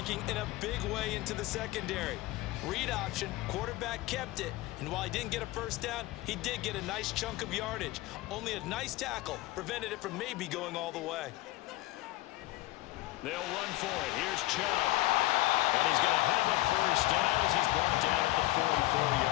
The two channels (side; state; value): right; quieter; 18.3 dB